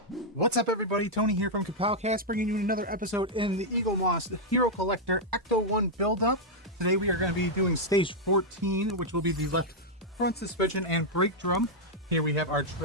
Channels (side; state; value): both; normal; correlation -0.03